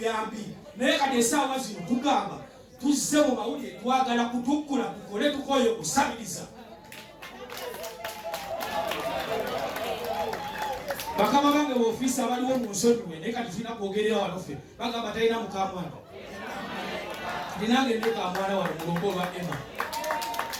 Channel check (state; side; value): identical; both; correlation 1.00